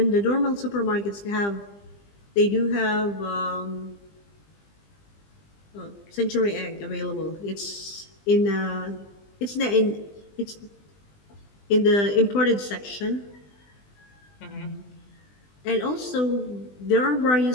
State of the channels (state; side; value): late; right; 20 ms